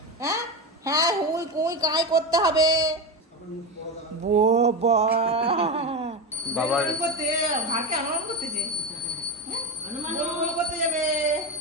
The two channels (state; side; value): normal; both; correlation 0.17